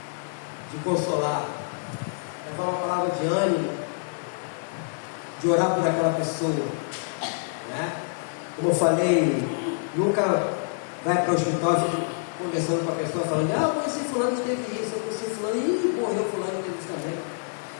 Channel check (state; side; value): silent; right; digital silence